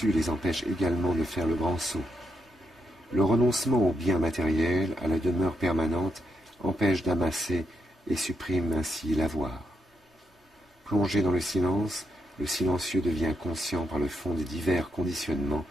les empêche également de faire le grand saut. Le renoncement aux biens matériels, à la demeure permanente, empêche d'amasser et supprime ainsi l'avoir. Plongé dans le silencieux devient conscient par le fond des divers conditionnements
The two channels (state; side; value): normal; both; correlation 0.79